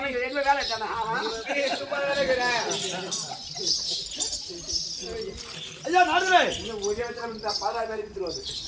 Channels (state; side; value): identical; both; correlation 1.00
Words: எங்க வேலை தானே ஐயா நாடுதுரே இன்னும் ஒரே இடத்துல பாதா மாதிரி விட்டுருவாரு